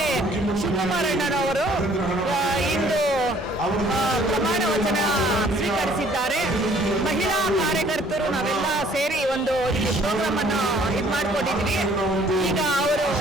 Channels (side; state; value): both; normal; correlation 0.58